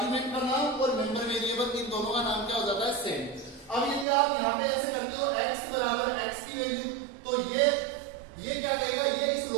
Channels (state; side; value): drops out; left; at 4.0 s